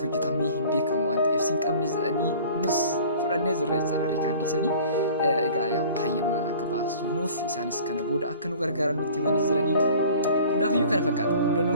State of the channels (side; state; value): both; inverted; correlation -0.46